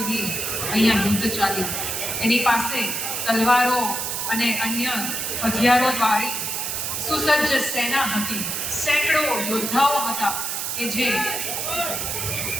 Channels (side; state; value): right; noise; hiss, 2 dB below the sound